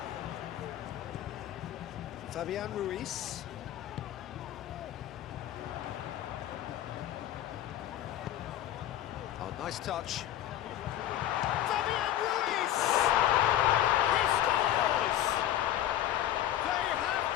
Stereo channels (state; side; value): quieter; right; 12.3 dB